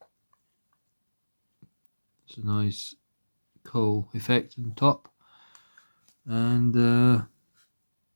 It's a nice coal effect on top, and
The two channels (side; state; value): both; inverted; correlation -1.00